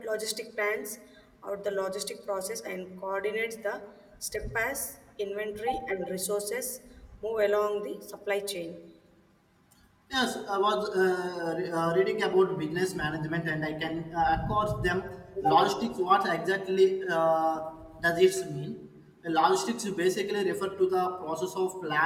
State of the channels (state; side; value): identical; both; correlation 1.00